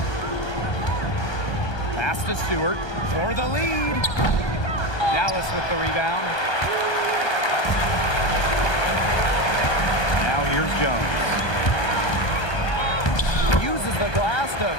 Pass to Stewart for the lead. Dallas with the rebound. Now here's Jones. Uses the glass to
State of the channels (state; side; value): late; right; 1.3 ms